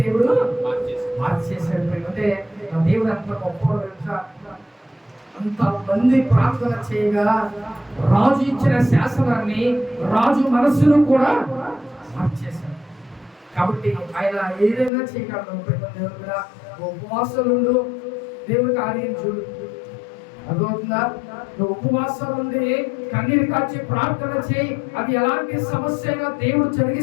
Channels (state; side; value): drops out; right; at 14.9 s